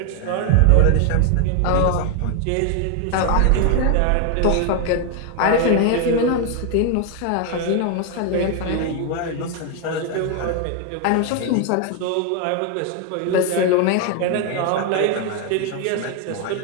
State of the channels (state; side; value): different; both; correlation 0.01